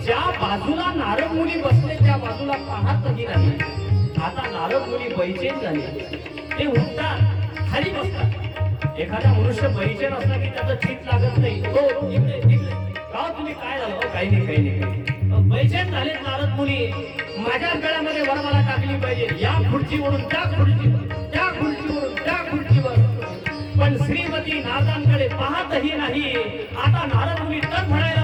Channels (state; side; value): identical; both; correlation 1.00